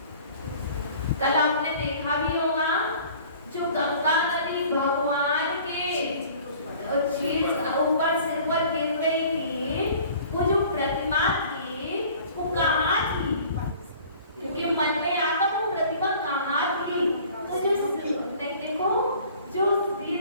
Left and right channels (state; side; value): inverted; both; correlation -0.49